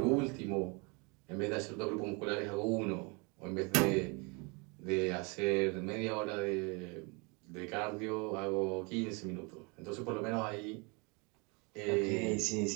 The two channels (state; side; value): quieter; left; 30.7 dB